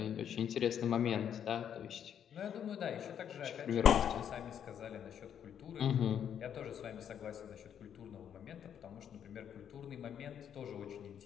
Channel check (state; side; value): quieter; right; 8.9 dB